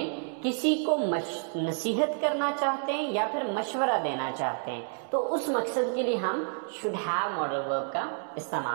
किसी को नसीहत करना चाहते हैं या फिर मशवरा देना चाहते हैं तो उस मकसद के लिए हम शुड हैव मॉडल वर्ब का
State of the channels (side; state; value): left; silent; 58 dB below the other